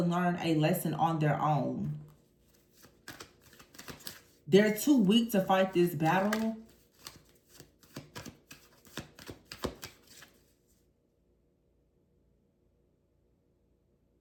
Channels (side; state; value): both; identical; correlation 1.00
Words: learn a lesson on their own. They're too weak to fight this battle.